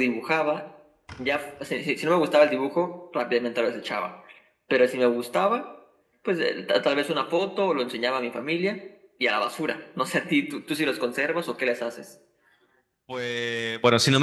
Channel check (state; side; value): identical; both; correlation 1.00